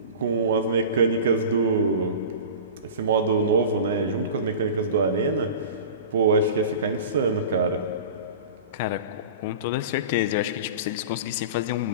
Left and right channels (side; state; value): both; inverted; correlation -0.34